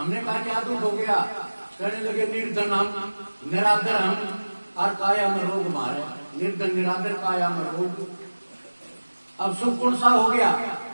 कहा क्या दुख हो गया? कहने लगे निर्धन हम, निरादर हम, और काया में रोग मारे। निर्धन निरादर काया में रोग, अब सुख कौन सा हो गया?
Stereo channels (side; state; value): both; inverted; correlation -1.00